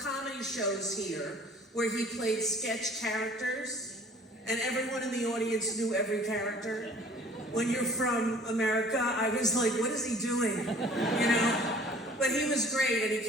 shows here where he played sketch characters, and everyone in the audience knew every character. When you're from America, I was like, what is he doing? You know? But he was great, and he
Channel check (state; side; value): normal; both; correlation 0.50